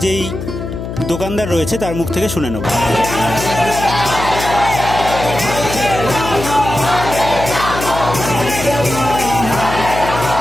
যেই দোকানদার রয়েছে তার মুখ থেকে শুনে নেব।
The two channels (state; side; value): noise; left; hum, 7 dB below the sound